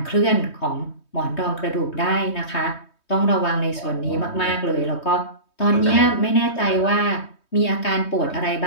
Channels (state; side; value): late; right; 3.2 ms